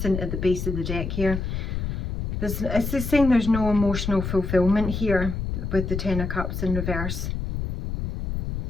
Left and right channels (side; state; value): left; noise; rumble, 4 dB below the sound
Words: at the base of the deck here. It's just saying there's no emotional fulfillment here with the Ten of Cups in reverse.